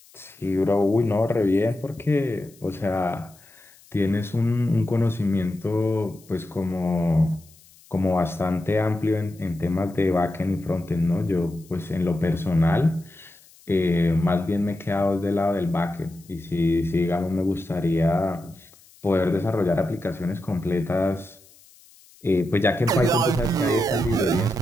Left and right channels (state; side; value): noise; left; hiss, 26 dB below the sound